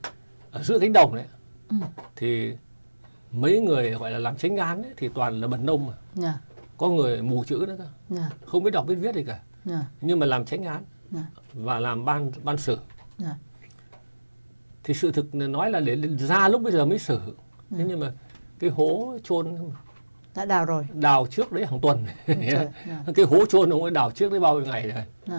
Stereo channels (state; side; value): inverted; both; correlation -1.00